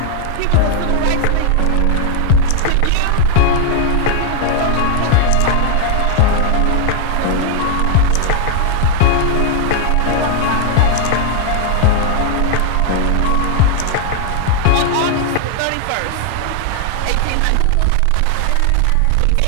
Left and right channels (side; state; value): both; different; correlation 0.00